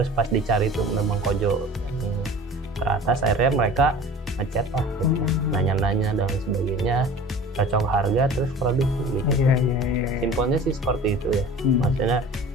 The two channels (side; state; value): both; normal; correlation 0.42